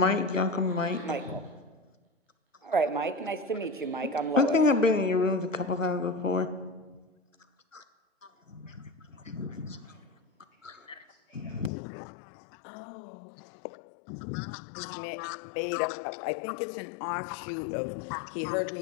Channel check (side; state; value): right; drops out; at 11.7 s